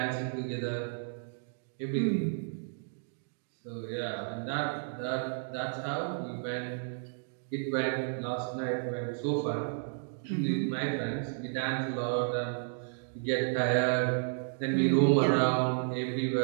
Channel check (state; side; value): silent; left; digital silence